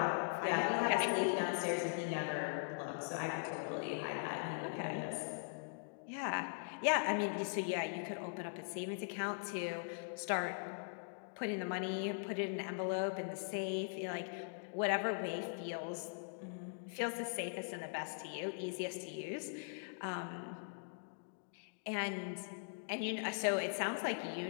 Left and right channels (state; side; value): silent; right; digital silence